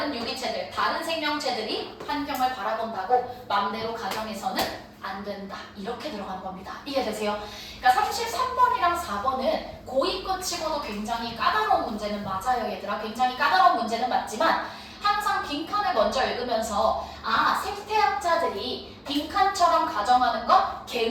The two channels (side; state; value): both; identical; correlation 1.00